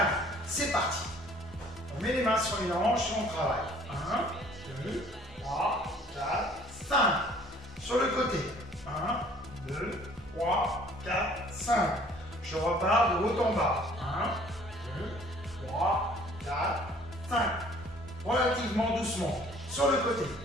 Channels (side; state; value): both; normal; correlation 0.55